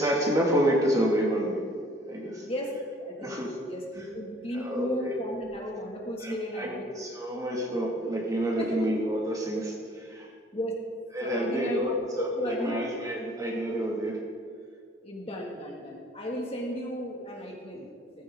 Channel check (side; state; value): both; normal; correlation 0.56